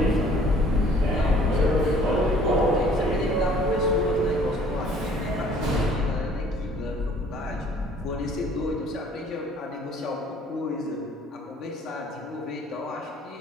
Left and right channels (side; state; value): both; normal; correlation 0.55